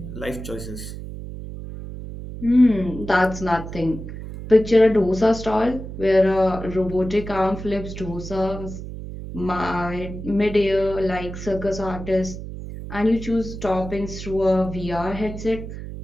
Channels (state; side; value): noise; right; hum, 10 dB below the sound